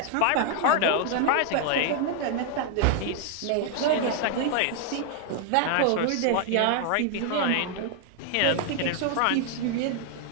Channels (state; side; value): different; both; correlation 0.00